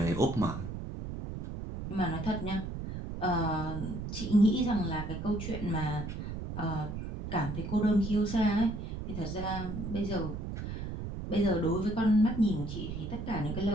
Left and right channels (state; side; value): noise; right; rumble, 6 dB below the sound